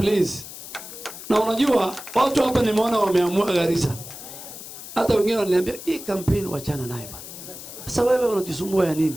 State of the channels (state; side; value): noise; left; hiss, 13 dB below the sound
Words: Na unajua, watu hapa nimeona wameamua Garissa. Hata wengine wananiambia, hii campaign wachana naye bana. Sasa wewe unajisumbua ya nini?